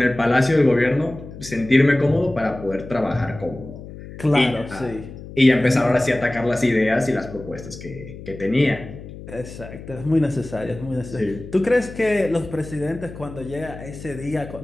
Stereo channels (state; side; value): noise; left; hum, 14 dB below the sound